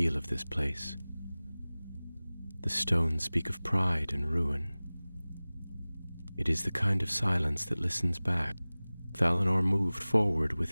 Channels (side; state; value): both; inverted; correlation -0.99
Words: of this place. The stones speak of pride and ruin. It is the kind of silence that listens back. Valinor moved forward